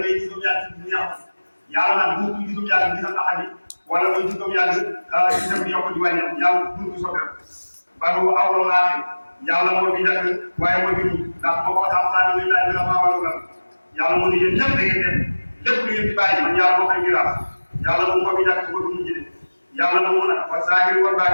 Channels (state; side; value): inverted; both; correlation -1.00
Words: gis doomu yàlla ci di yàqu yàlla nag bu ñu gisum yàlla gisam axadi wala muy gis doomu yàlla gisam di yokk di wàññeeku yàlla bu ñu soppeeku ba bu awlo laate yàlla moo fi njëkk waaye moo fi mujj ndax moo ko xam-xam ne laaj bi la maa wàllu yàlla mu ne yéen ñëpp da ngeen def lépp lu ngeen di bàyyi man yàlla moo koy miraas yàlla moom moo fi njëkk su ko du mujj de yàlla na mu nag wa zaahir wal